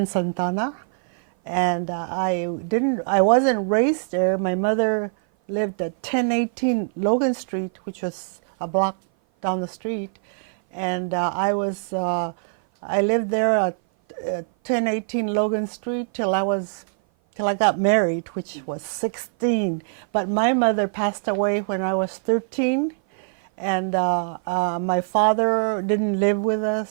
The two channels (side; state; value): left; silent; 57 dB below the other